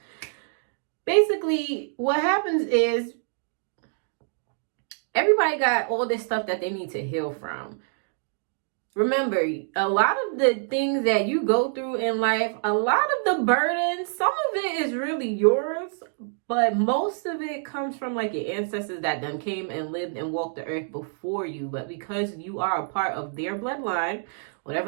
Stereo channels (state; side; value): silent; left; digital silence